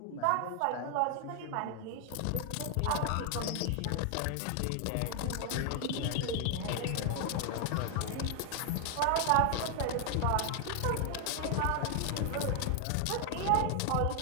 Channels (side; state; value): both; different; correlation 0.00